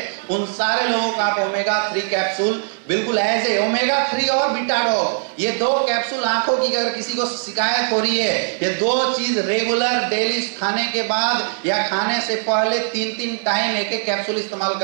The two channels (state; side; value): silent; left; digital silence